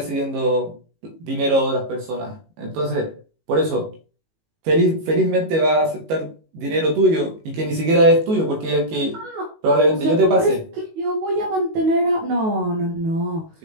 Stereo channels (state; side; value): late; left; 19 ms